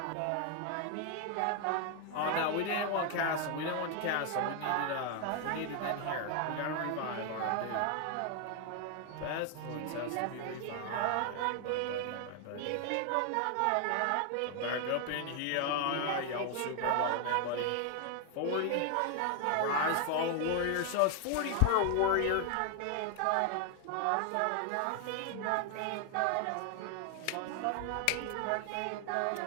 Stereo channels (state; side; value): different; both; correlation 0.00